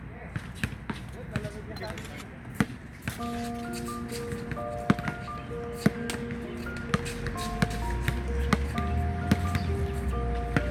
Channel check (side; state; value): both; identical; correlation 1.00